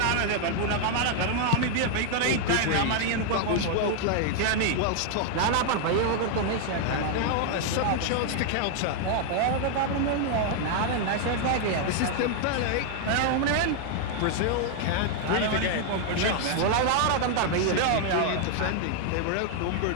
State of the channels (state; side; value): different; both; correlation 0.00